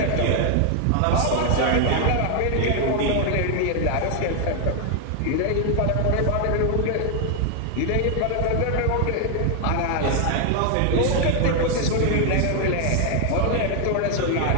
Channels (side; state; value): both; different; correlation 0.00